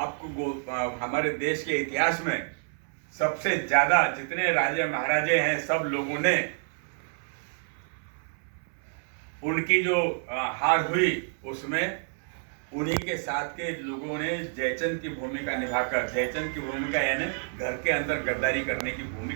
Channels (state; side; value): silent; left; 58 dB below the other